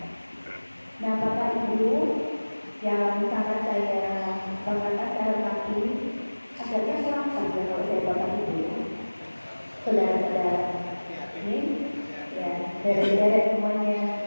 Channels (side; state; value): both; inverted; correlation -1.00